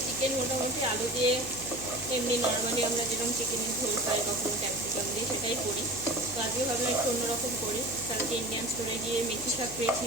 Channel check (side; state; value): right; noise; hum, 17 dB below the sound